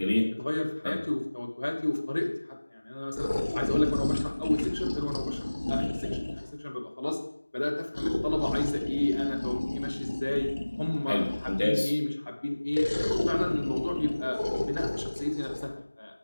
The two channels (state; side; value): inverted; both; correlation -1.00